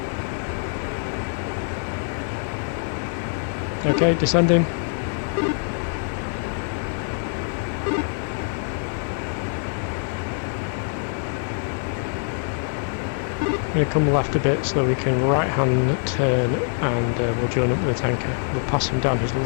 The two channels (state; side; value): silent; right; 61 dB below the other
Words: Okay, descending. I'm going to come left a bit so that we can right hand turn and we'll join up with the tanker. We'll pass him down his